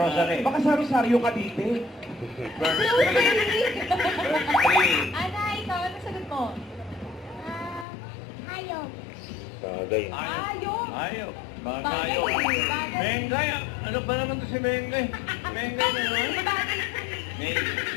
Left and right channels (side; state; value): right; drops out; at 7.9 s